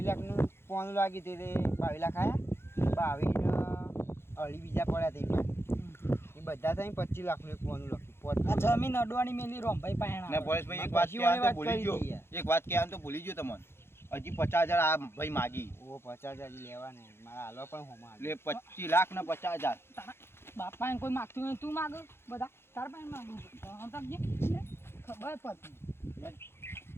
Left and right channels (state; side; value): late; right; 0.12 ms